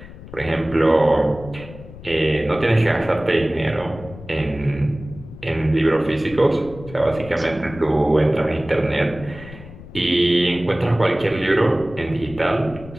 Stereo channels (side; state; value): left; noise; rumble, 16 dB below the sound